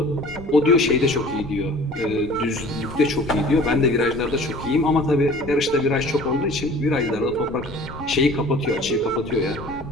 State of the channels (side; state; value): left; noise; rumble, 16 dB below the sound